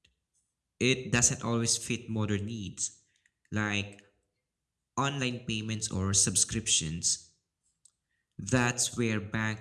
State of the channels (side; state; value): both; identical; correlation 1.00